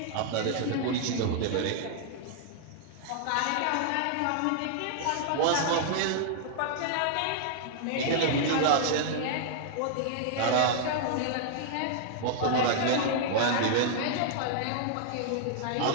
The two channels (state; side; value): different; both; correlation -0.01